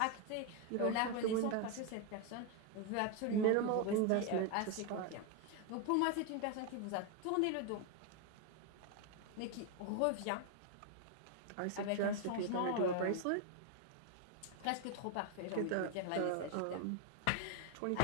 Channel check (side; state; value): both; different; correlation 0.01